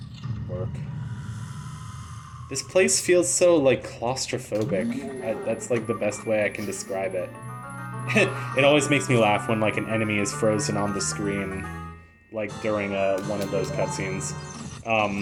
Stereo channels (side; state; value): both; identical; correlation 1.00